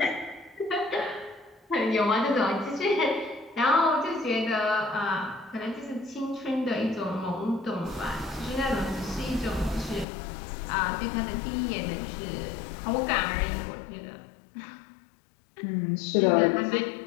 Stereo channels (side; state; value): right; drops out; at 10.1 s